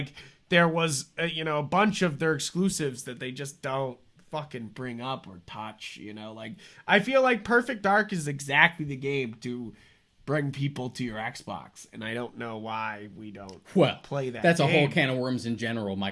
there was, a bunch of their exclusives that they just don't fucking bring up or touch, you know? Like, I feel like Perfect Dark is exactly the game to bring people to your Xbox, and I don't know why we don't play that. That's game. A whole can of worms in general.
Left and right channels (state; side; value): identical; both; correlation 1.00